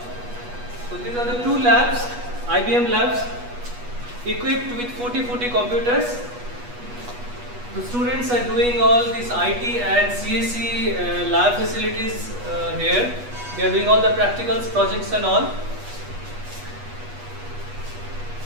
So these are the two labs, IBM labs, equipped with 40 computers. The students are doing all these IT and CSE lab facilities here. They are doing all the practicals, projects and all.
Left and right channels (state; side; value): late; left; 8.2 ms